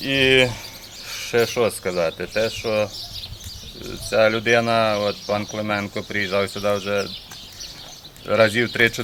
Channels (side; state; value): both; identical; correlation 1.00